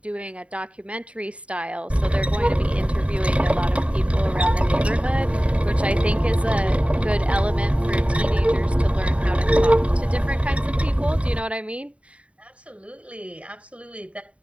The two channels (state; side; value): late; left; 0.063 ms